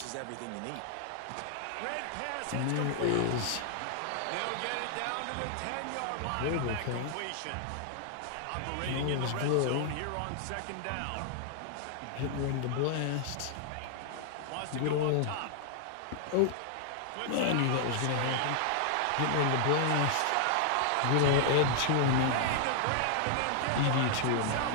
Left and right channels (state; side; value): different; both; correlation 0.00